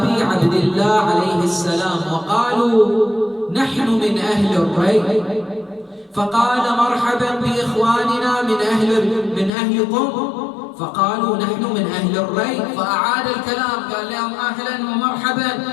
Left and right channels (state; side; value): drops out; right; at 9.5 s